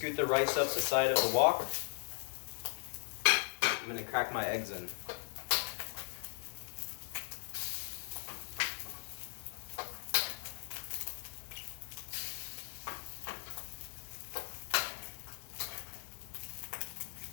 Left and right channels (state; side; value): silent; right; digital silence